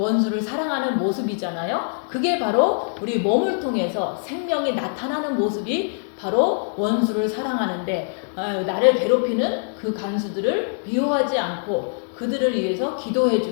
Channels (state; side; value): silent; right; digital silence